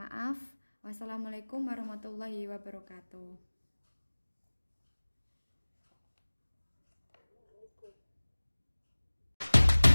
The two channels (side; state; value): both; inverted; correlation -1.00